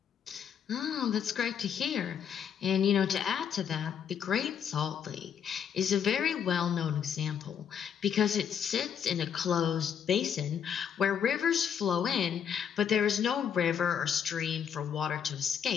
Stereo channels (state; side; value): quieter; right; 8.0 dB